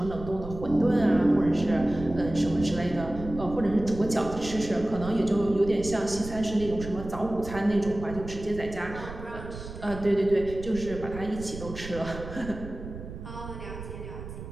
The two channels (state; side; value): noise; right; rumble, 11 dB below the sound